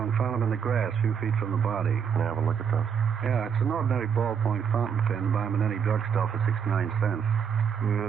found them in the grass a few feet from the body. Can I have a look at those? Yeah, it's an ordinary ballpoint fountain pen. Buy them in any drugstore for 69 cents.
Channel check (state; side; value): quieter; left; 7.3 dB